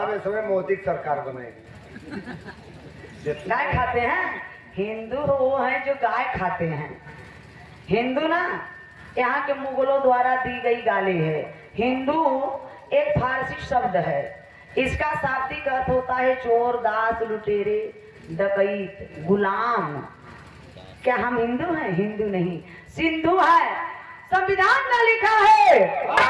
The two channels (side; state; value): both; identical; correlation 1.00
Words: इस समय मोदी की सरकार बनाएगी। गाय खाते हैं हिंदू वो हैं जो गाय खाते हैं। हिंदू ना यहाँ के मुगलों द्वारा दी गई गाली है। हिंदू एक फारसी शब्द है, इसका शाब्दिक अर्थ होता है चोर, दास, लुटेरे, डकैत, गुलाम। क्या हम हिंदू हैं? हिंदू नहीं, सिंधु है। संविधान में लिखा है